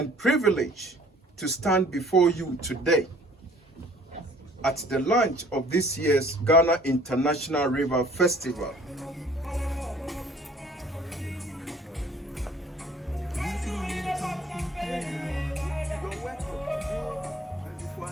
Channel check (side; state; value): both; normal; correlation 0.55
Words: privilege to stand before you today at the launch of this year's Ghana International River Festival.